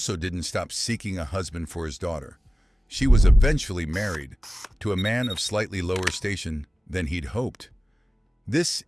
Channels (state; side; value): normal; both; correlation 0.96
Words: didn't stop seeking a husband for his daughter. She was eventually married to a man of slightly lower station than he'd hoped. This